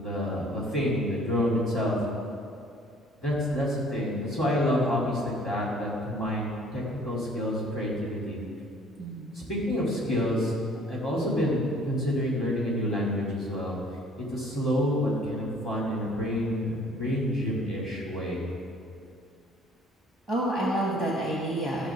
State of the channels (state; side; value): normal; both; correlation 0.55